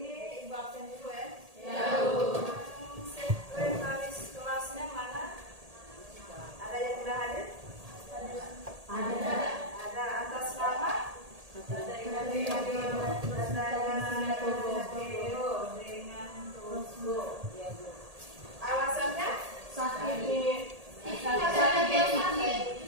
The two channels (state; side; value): late; left; 1.8 ms